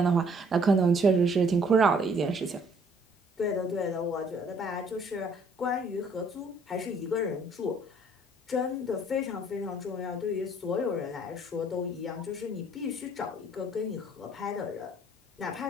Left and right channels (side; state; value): both; normal; correlation 0.61